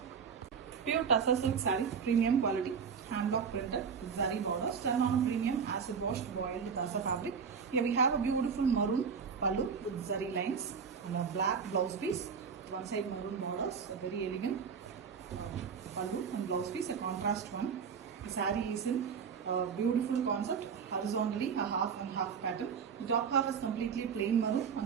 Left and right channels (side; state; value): left; quieter; 6.3 dB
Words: Pure tussar silk saree, premium quality, hand block printed with zari borders, done on a premium acid washed boiled tussar fabric. Here we have a beautiful maroon pallu with zari lines and a black blouse piece. One side maroon borders, a very elegant pallu and blouse piece, a contrast one. The saree is in beautiful concept, horizontally a half and half pattern. The top half is completely plain maroon